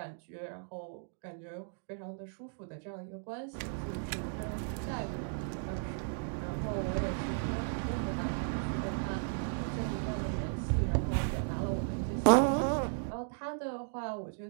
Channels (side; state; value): left; silent; digital silence